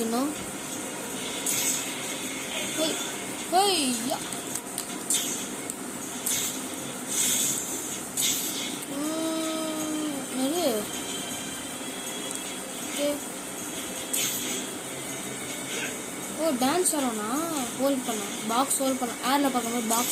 இன்னும். டான்ஸ் ஆடணும்னா ஹோல்ட் பண்ண பாக்ஸ் ஹோல்ட் பண்ண ஏரில் பார்க்கும்போது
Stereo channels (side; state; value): both; identical; correlation 1.00